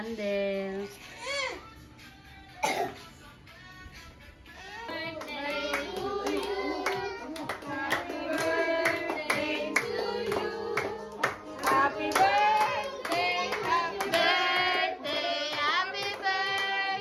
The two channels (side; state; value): both; identical; correlation 1.00